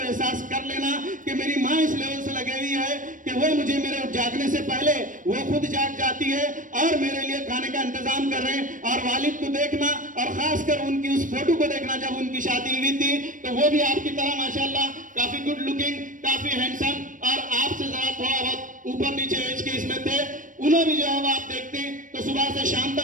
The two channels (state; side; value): late; left; 0.38 ms